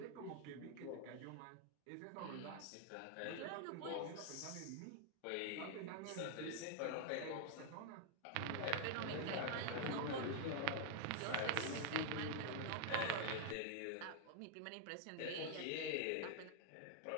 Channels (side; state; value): both; different; correlation -0.01